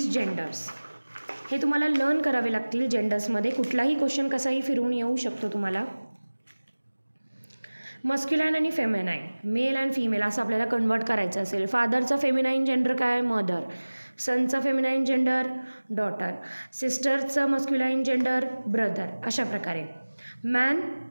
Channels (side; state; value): both; inverted; correlation -1.00